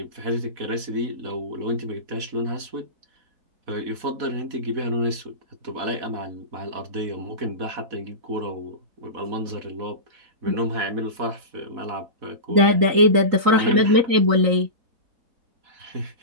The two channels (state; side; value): late; left; 4.1 ms